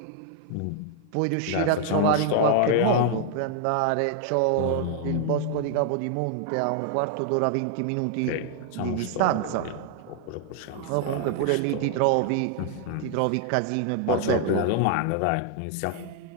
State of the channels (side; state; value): both; different; correlation 0.00